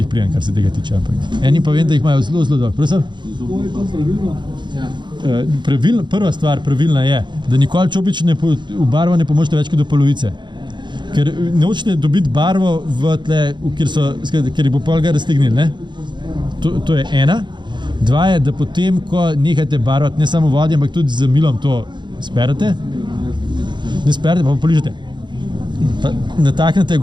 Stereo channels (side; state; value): left; late; 0.22 ms